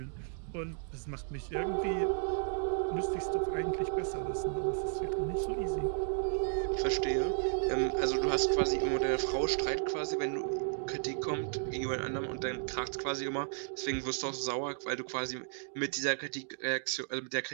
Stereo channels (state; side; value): silent; left; digital silence